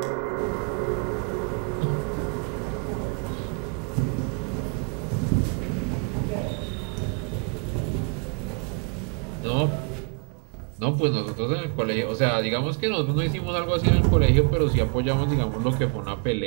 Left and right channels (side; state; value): left; quieter; 38.3 dB